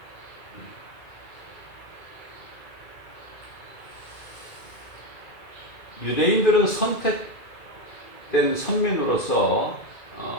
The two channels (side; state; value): right; late; 2.1 ms